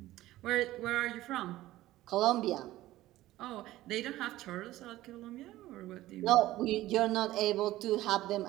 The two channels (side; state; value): left; quieter; 15.9 dB